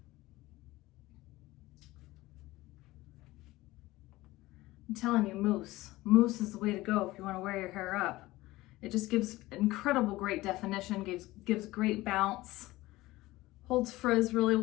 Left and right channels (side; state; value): right; quieter; 18.5 dB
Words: I'm telling you, mousse. Mousse is the way to go if you want to wear your hair up. It just gives incredible great definition, gives great bounce, holds frizz really